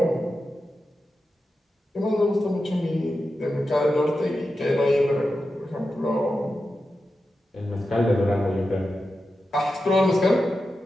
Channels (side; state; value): both; normal; correlation 0.90